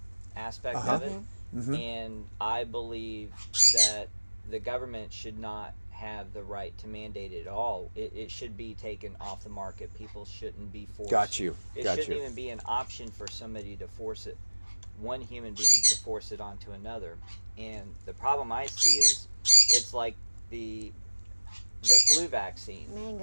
aspect Uh-huh. of it, and I believe that the government should not have the right to mandate it at all. It should be taken off the market. People shouldn't be forced. Got you. It Got shouldn't you. even be an option for somebody to force it, one human being to force it onto another. And the problem I see is it's like the flu vaccine.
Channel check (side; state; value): both; inverted; correlation -1.00